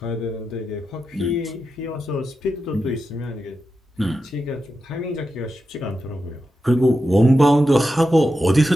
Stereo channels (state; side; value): normal; both; correlation 0.89